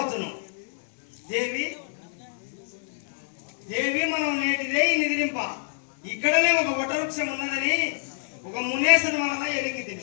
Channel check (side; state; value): right; silent; digital silence